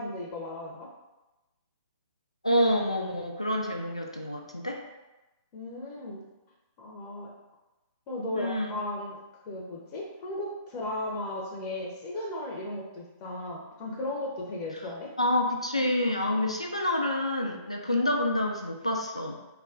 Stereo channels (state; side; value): inverted; both; correlation -0.63